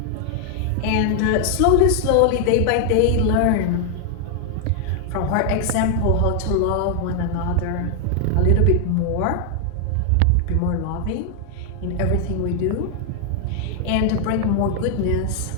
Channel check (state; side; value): different; both; correlation 0.00